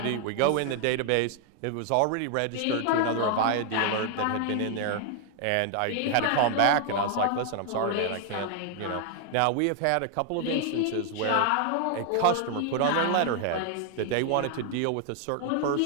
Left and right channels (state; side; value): different; both; correlation 0.00